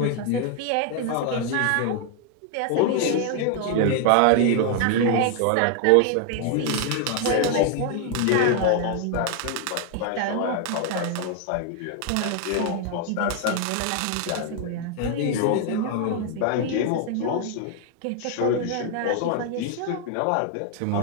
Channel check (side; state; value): both; different; correlation 0.00